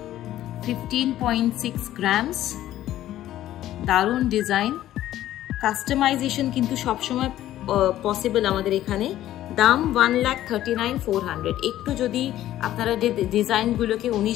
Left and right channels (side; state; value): right; quieter; 13.3 dB